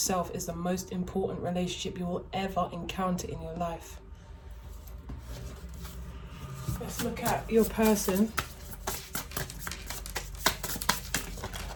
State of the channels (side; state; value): both; identical; correlation 1.00